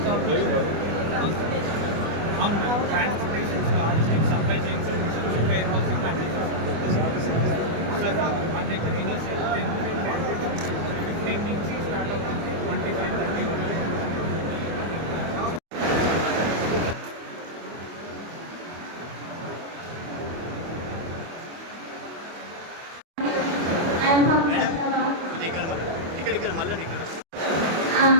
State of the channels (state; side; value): late; left; 25 ms